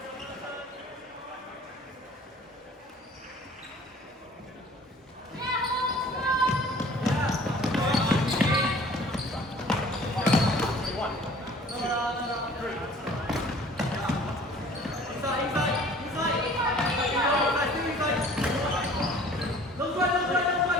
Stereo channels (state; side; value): normal; both; correlation 0.50